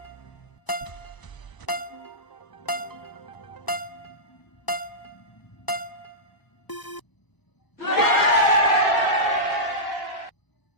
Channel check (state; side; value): late; right; 1.0 ms